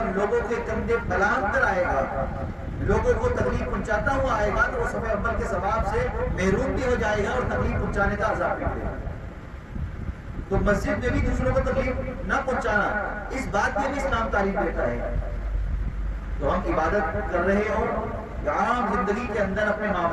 لوگوں کے کندھے پھلانگ کر آئے گا، لوگوں کو تکلیف پہنچاتا ہوا آئے گا، تو وہ صف اول کے ثواب سے محروم بھی ہو جائے گا اور تکلیف پہنچانے کا عذاب بھی دے گا۔ تو مسجد میں بھی دوسروں کو تکلیف نہ پہنچانا، اس بات کی بھی اسلام تعلیم دیتا ہے۔ تو ہم عبادت کر رہے ہوں یا عام زندگی کے اندر اپنے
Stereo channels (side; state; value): both; identical; correlation 1.00